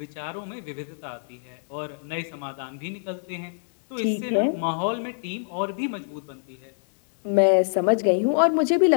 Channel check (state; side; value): silent; right; 62 dB below the other